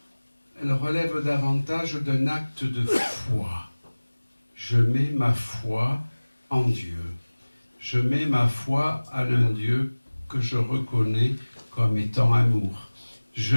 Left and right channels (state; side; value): inverted; both; correlation -1.00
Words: relève davantage d'un acte de foi. Je mets ma foi en Dieu. Je mets ma foi en un Dieu que je reconnais comme étant amour. Je